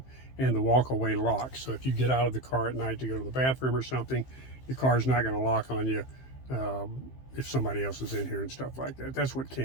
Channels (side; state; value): right; late; 15 ms